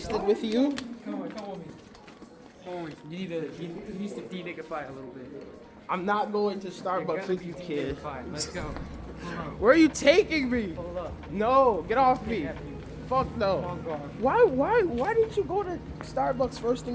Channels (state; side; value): identical; both; correlation 1.00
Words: with you. Come with me. You need to de-nigify a little bit. I'm not going to Starbucks with you, kid. Let's go. Where are you taking me? Hold up. No, get off me. Fuck no. Why didn't you go to Starbucks first